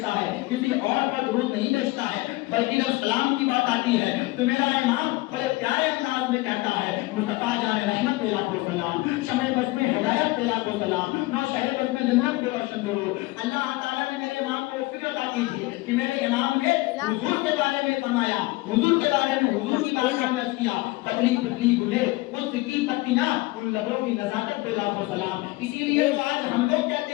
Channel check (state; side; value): quieter; right; 21.1 dB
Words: ہے, کسی اور پر درود نہیں بھیجتا ہے, بلکہ جب سلام کی بات آتی ہے تو میرا امام بڑے پیارے انداز میں کہتا ہے مصطفیٰ جان رحمت پہ لاکھوں سلام, شمع بزم ہدایت پہ لاکھوں سلام, نو شہر بزم جنت پہ روشن کرو. اللہ تعالیٰ نے میرے امام کو فکر عطا کی تھی کہ میرے امام نے حضور کے بارے میں فرمایا, حضور کے بارے میں حضور کی بات کا عرض کیا, پتلی پتلی گلے ان کی پتیاں ان لبوں کی نزاکت پہ لاکھوں سلام. اسی لیے تو آج ہم لوگ